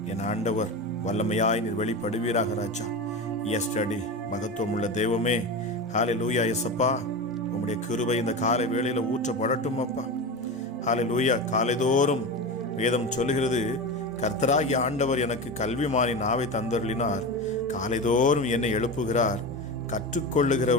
என் ஆண்டவர் வல்லமையாய் நீர் வெளிப்படுவீராக ராஜா. எஸ்டடி மகத்துவம் உள்ள தெய்வமே, ஹல்லேலூயா. எஸ்அப்பா, உம்முடைய கிருபை இந்த காலை வேளையில ஊற்றப்படட்டும் அப்பா. ஹல்லேலூயா. காலைதோறும் வேதம் சொல்லுகிறது, கர்த்தராகிய ஆண்டவர் எனக்கு கல்விமானின் நாவை தந்தருளினார், காலைதோறும் என்னை எழுப்புகிறார்,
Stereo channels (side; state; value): both; normal; correlation 0.24